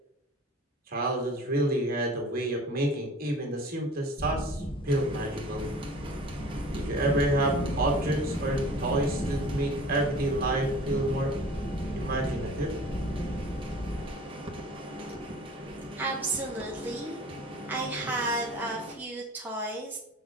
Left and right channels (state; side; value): normal; both; correlation 0.43